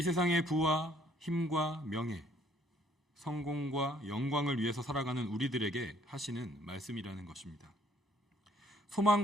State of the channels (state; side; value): normal; both; correlation 0.63